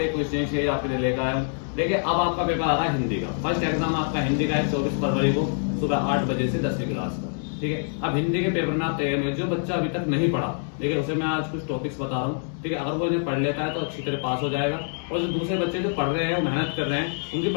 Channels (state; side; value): silent; right; 61 dB below the other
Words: कुछ नई चीज आपके लिए लेकर आया हूँ। देखिए, अब आपका पेपर आ रहा है हिंदी का। फर्स्ट एग्जाम आपका हिंदी का है 24 फरवरी को सुबह 8 बजे से 10वीं क्लास का। ठीक है, अब हिंदी के पेपर में आप तैयार हुए। जो बच्चा अभी तक नहीं पढ़ा, देखिए उसे मैं आज कुछ टॉपिक्स बता रहा हूँ। ठीक है, अगर वो इन्हें पढ़ लेता है तो अच्छी तरह पास हो जाएगा, और जो दूसरे बच्चे जो पढ़ रहे हैं, वो मेहनत कर रहे हैं, उनकी